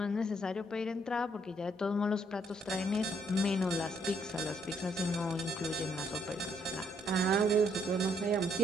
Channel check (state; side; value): normal; both; correlation 0.70